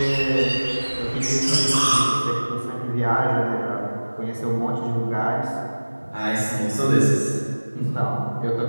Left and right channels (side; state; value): both; inverted; correlation -1.00